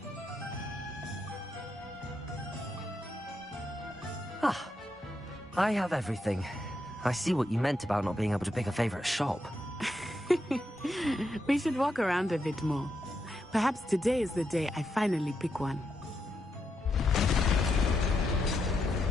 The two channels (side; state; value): both; normal; correlation 0.83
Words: Ah, I have everything. I see what you meant about not being able to pick a favorite shop. We should walk around a bit more. Perhaps today is the day I finally pick one.